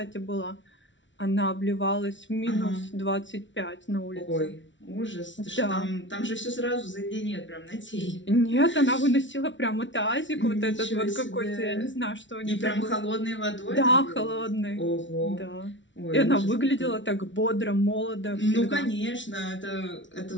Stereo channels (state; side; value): late; right; 0.55 ms